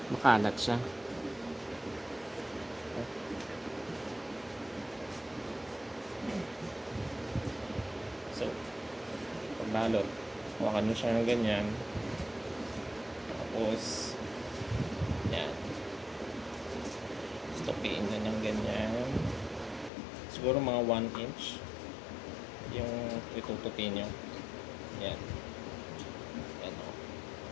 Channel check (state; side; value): drops out; right; at 19.9 s